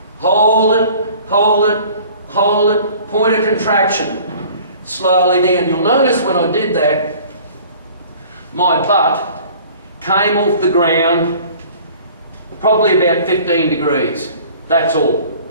hold it, hold it, hold it, pointer contraction, slowly down. You'll notice when I did that, my butt came off the ground probably about 15 degrees. That's all.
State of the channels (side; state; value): both; inverted; correlation -0.49